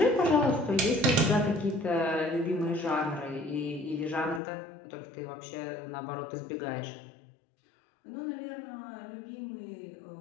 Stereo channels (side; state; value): right; drops out; at 4.4 s